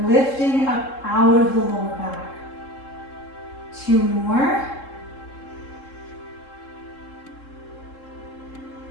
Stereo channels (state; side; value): late; right; 3.7 ms